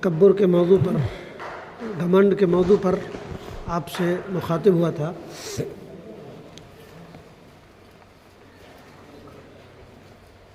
کے موضوع پر، گھمنڈ کے موضوع پر آپ سے مخاطب ہوا تھا۔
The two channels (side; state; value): both; identical; correlation 1.00